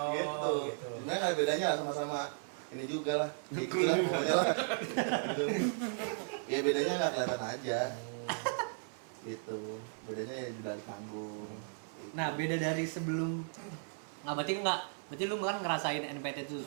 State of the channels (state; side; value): silent; left; 54 dB below the other